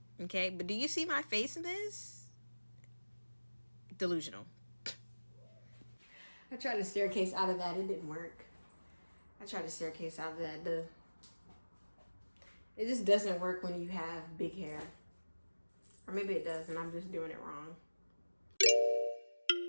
Okay, but do you see my face in this? Delusional. I tried to staircase out of that. It didn't work. I tried to staircase out of that. It just doesn't work when you have big hair. Or maybe it does and I'm just doing it wrong.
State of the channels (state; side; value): inverted; both; correlation -1.00